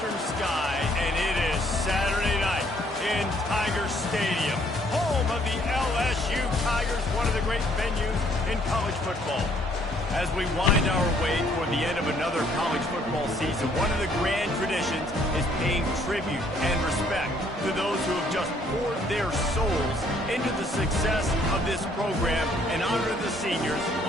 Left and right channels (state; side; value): normal; both; correlation 0.64